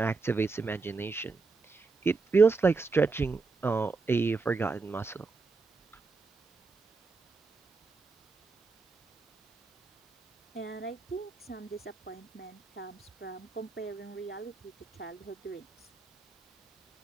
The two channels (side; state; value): left; quieter; 4.1 dB